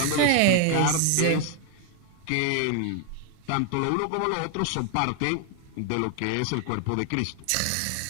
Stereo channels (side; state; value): both; different; correlation 0.00